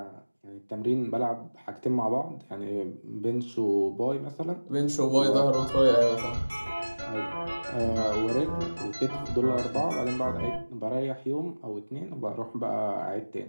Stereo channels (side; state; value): both; inverted; correlation -1.00